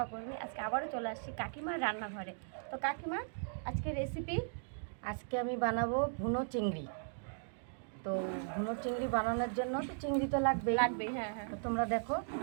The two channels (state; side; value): silent; left; digital silence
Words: আজকে আবারও চলে আসছি কাকিমার রান্নাঘরে। তো কাকিমা, আজকে রেসিপি আজকে আমি বানাবো ভুনো চিংড়ি। তো ভুনো চিংড়ি বানানোর জন্য তো চিংড়ি তো লাগবেই। হ্যাঁ হ্যাঁ। তো তোমরা দেখো